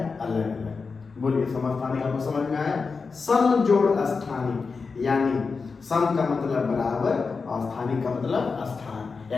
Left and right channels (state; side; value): quieter; right; 4.7 dB